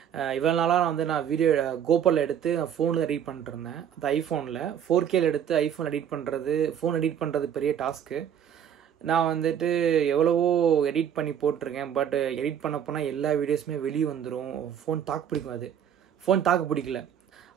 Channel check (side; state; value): left; quieter; 9.0 dB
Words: இவ்வளோ நாளாக நான் வீடியோ கோபரில் எடுத்து நான் ஃபோனில் எடிட் பண்ணிட்டுருந்தேன். அது ஐஃபோனில் 4Kல எடுத்து ஐஃபோன் எடிட் பண்ணுறது, ஃபோன் எடிட் பண்ணுறது பெரிய டாஸ்க்கு. நான் வந்துட்டு எவ்வளவோ எடிட் பண்ணி போட்டிருக்கேன். பட் எடிட் பண்ண போனால் எல்லா வீடியோஸுமே வெளியே வந்துடும். ஃபோன் தாக்கு பிடிக்கும், அது ஃபோன் தாக்கு பிடிக்கல.